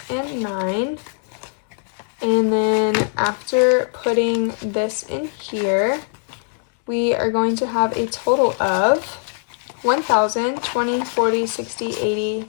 and 9. And then after putting this in here, we are going to have a total of 1,000, 20, 40, 60, 80,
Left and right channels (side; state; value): right; silent; digital silence